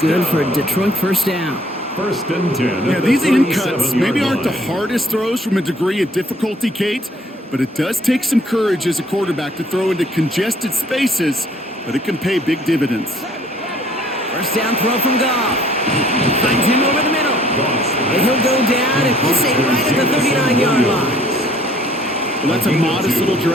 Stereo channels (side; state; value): both; normal; correlation 0.59